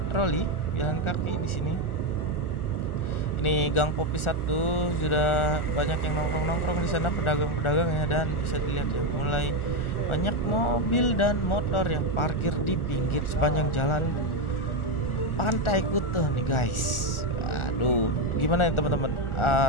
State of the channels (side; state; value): right; late; 1.4 ms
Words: jalan kaki di sini. Ini Gang Popi 1 sudah banyak yang nongkrong-nongkrong di sana, pedagang-pedagang ya, dan bisa dilihat ya mulai banyak mobil dan motor yang parkir di pinggir sepanjang jalan Pantai Kuta nih guys. Aduh, gimana ya teman-teman?